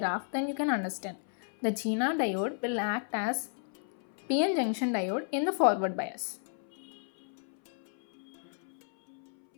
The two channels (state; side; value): silent; right; 56 dB below the other